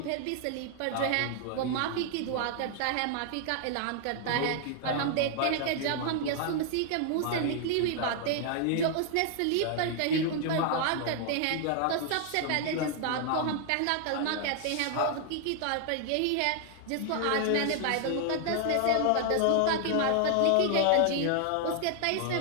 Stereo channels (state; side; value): different; both; correlation 0.00